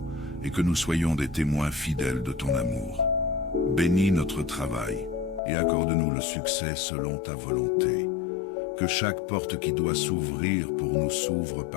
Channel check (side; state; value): right; drops out; at 5.4 s